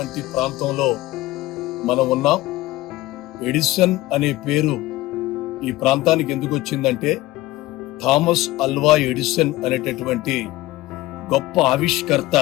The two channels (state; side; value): quieter; right; 17.8 dB